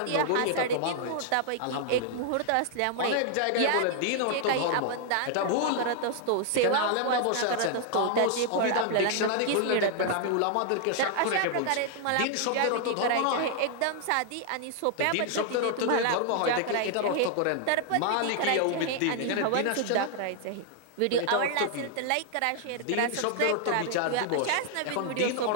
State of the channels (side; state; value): both; different; correlation 0.00